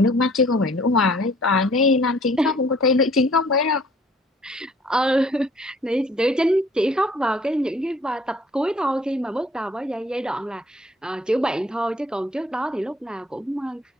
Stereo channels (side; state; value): both; normal; correlation 0.56